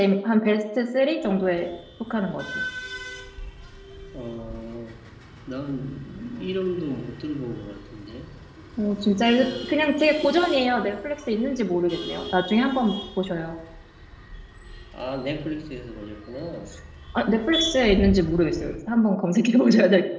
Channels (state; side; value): identical; both; correlation 1.00